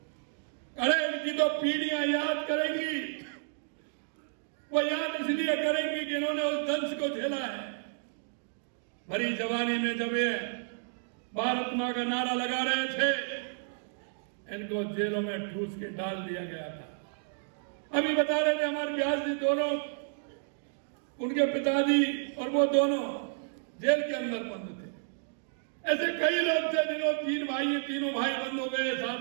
अरे इनकी तो पीढ़ियां याद करेंगी। वो याद इसलिए करेंगी कि इन्होंने उस दंश को झेला है। भरी जवानी में जब ये भारत मां का नारा लगा रहे थे, इनको जेलों में ठूस के डाल दिया गया था। अभी बता रहे थे हमारे व्यास जी, दोनों उनके पिताजी और वो दोनों जेल के अंदर बंद थे। ऐसे कई लोग थे जिन्होंने तीनों भाई बंद हो गए, साथ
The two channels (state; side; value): silent; left; digital silence